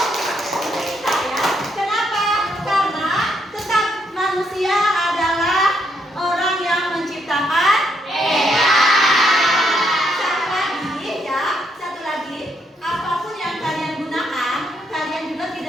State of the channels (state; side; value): normal; both; correlation 0.75